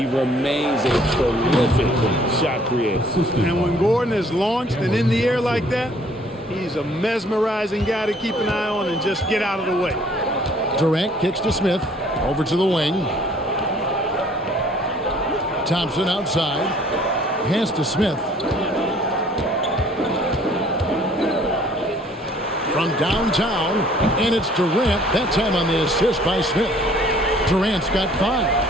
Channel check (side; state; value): both; normal; correlation 0.57